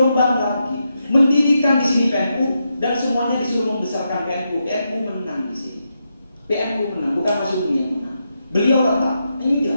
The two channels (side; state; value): both; inverted; correlation -0.84